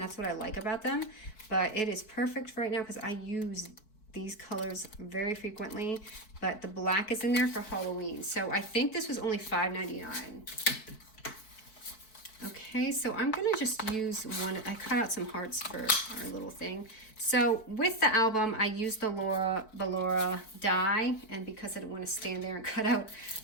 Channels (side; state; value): right; late; 4.6 ms